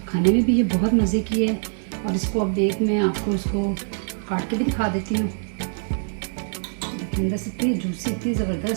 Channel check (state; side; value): silent; left; digital silence